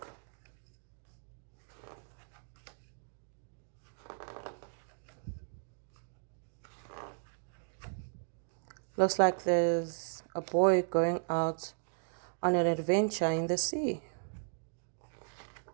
Looks like there's a boy going out on an adventure in the sea.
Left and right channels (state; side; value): silent; left; digital silence